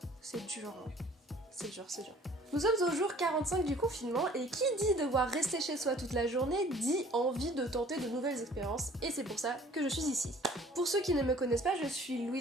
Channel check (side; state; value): both; normal; correlation 0.52